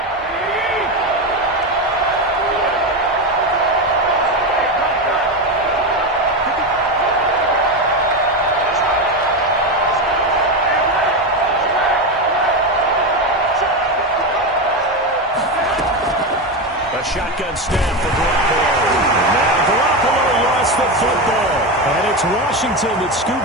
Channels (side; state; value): both; normal; correlation 0.15